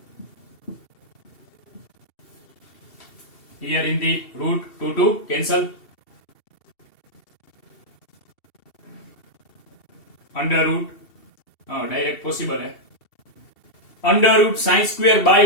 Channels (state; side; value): late; right; 2.7 ms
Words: Here in the root 2 cancel. Under root direct possible है. Under root sin square